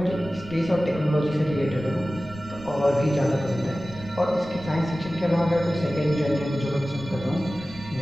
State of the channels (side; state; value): right; noise; rumble, 17 dB below the sound